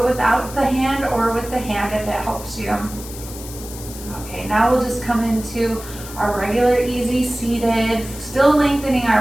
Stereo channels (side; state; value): left; noise; hiss, 14 dB below the sound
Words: without the hand or with the hand if it helps you. Okay, now we'll just come into our regular easy seated, still lengthening